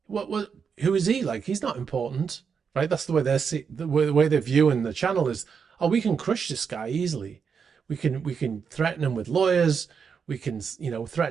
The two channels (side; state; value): left; quieter; 6.3 dB